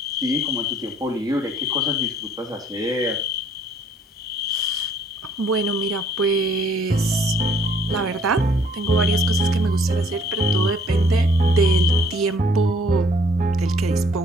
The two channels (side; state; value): both; normal; correlation 0.61